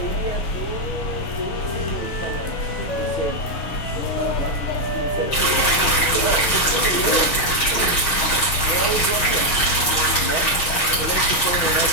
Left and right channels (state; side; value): late; right; 6.5 ms